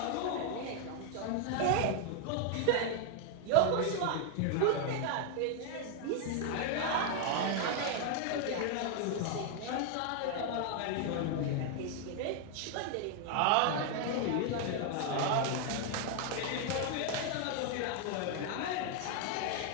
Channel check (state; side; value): different; both; correlation 0.01